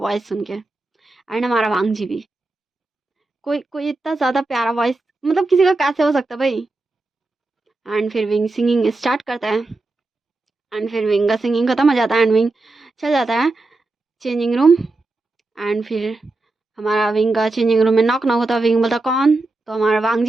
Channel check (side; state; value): left; quieter; 3.1 dB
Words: सुन के। एंड हमारा वांग जी भी, कोई कोई इतना ज़्यादा प्यारा वॉइस मतलब किसी का कैसे हो सकता है भाई। एंड फिर विंग सिंगिंग स्टार्ट करता है, एंड फिर विंग का सिंगिंग खत्म हो जाता है, एंड विंग चल जाता है चेंजिंग रूम। एंड फिर हमारा विंग का चेंजिंग रूम में नॉक नॉक होता है। विंग बोलता, कौन। तो हमारा वांग